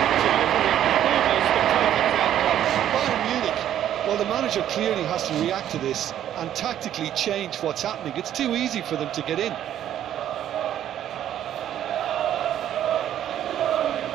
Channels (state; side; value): quieter; left; 11.1 dB